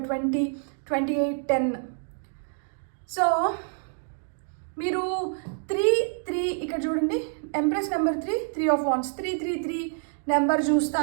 20, 28, 10. సో మీరు 3 ఇక్కడ చూడండి, empress number 3 of wands, 3 number చూస్తా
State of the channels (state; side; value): silent; left; 60 dB below the other